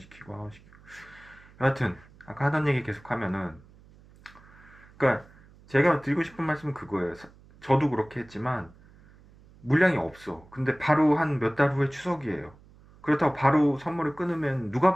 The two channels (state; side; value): noise; right; hum, 25 dB below the sound